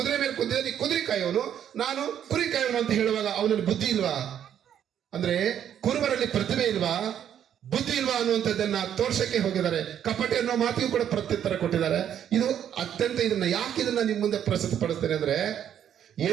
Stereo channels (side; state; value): left; quieter; 9.7 dB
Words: ಮೇಲೆ ಕುದುರೆ, ನೀ ಕುದುರೆ ಕಾಯುವವನು, ನಾನು ಕುರಿ ಕಾಯುವನು ಅಂತ ಹೇಳುವಾಗ ಅವನಲ್ಲಿ ಬುದ್ಧಿ ಇಲ್ವಾ? ಅಂದ್ರೆ ಕುರುಬರಲ್ಲಿ ಪ್ರತಿಭೆ ಇಲ್ವಾ, ಬುದ್ಧಿ ಇಲ್ವಾ ಅನ್ನುವಂಥದ್ದನ್ನ ತೋರ್ಸಕ್ಕೆ ಹೋಗಿದ್ದಾರೆ. ಕಪಟ ಅನ್ನೋ ಮಾತಿಗೂ ಕೂಡ ಪ್ರತ್ಯುತ್ತರ ಕೊಟ್ಟಿದ್ದಾರೆ. ಇದು ಅತ್ಯಂತ ಯಾಕೆ ಇದನ್ನ ನಿಮ್ ಮುಂದೆ ಪ್ರಸ್ತುತಪಡಿಸ್ತೇನೆ ಅಂದ್ರೆ,